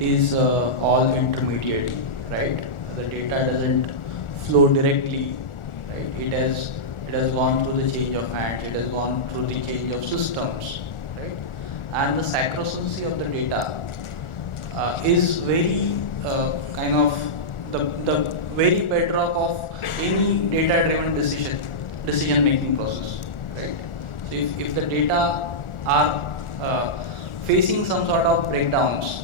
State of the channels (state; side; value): late; right; 1.4 ms